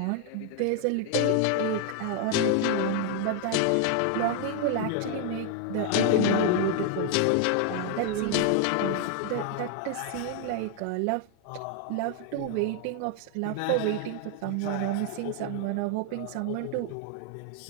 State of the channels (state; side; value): different; both; correlation 0.00